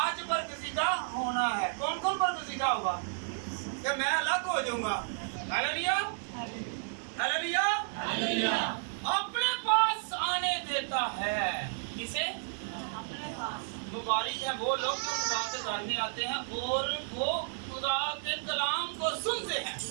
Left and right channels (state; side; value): silent; left; digital silence